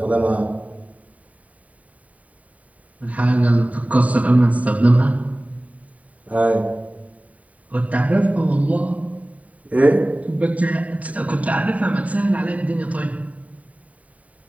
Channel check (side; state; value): left; late; 0.069 ms